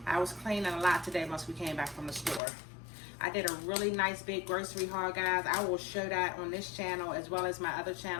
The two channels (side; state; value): right; drops out; at 2.4 s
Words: I was cleaning a lot today once we came back from the store. I did a really nice big grocery haul, guys. I will show that on this channel as well as my other